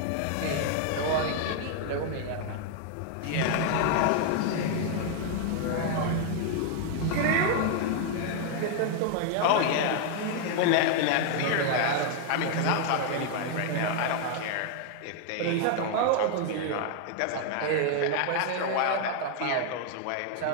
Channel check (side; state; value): both; different; correlation 0.00